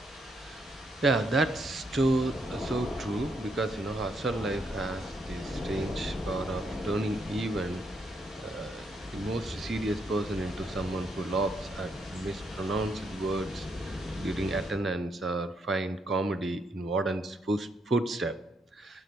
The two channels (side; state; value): both; normal; correlation 0.76